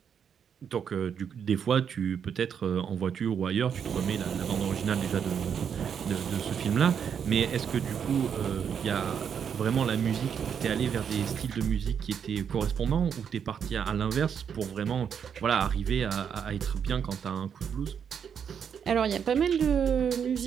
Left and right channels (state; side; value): quieter; left; 7.6 dB